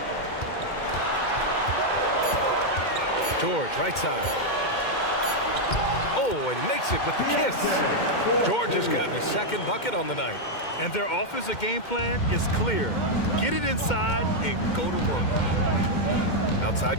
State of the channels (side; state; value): right; late; 2.1 ms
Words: George, right side. Oh, and makes it with the kiss. George has gotten his 2nd bucket on the night. And their offensive game plan is clear. Get it inside and go to work. Outside